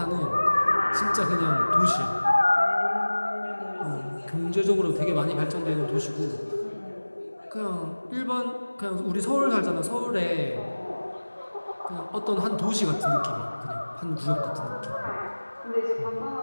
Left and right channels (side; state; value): both; inverted; correlation -1.00